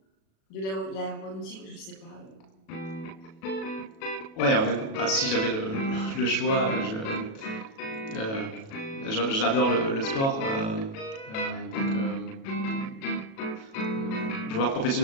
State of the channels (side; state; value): right; late; 37 ms